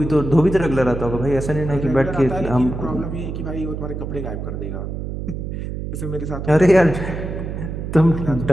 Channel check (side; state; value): right; noise; hum, 5 dB below the sound